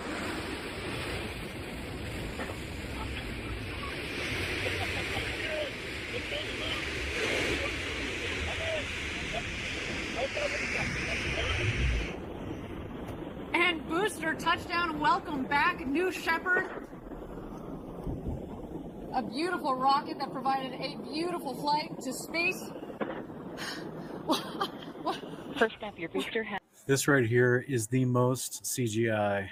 And booster touchdown. Welcome back, New Shepard. A beautiful rocket that provided a beautiful flight to space. First up, your booster has. This right here is the most CGI,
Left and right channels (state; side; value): identical; both; correlation 1.00